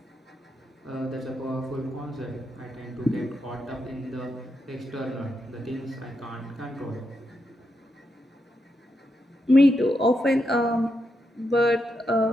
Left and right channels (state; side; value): normal; both; correlation 0.84